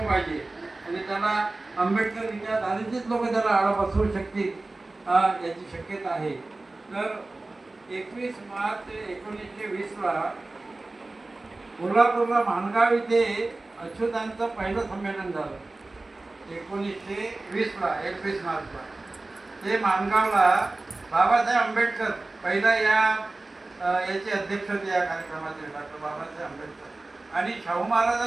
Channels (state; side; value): quieter; left; 3.1 dB